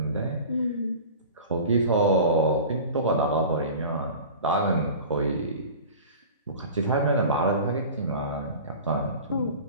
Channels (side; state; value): both; inverted; correlation -0.37